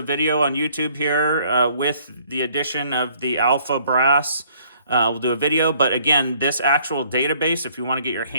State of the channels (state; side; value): inverted; both; correlation -0.61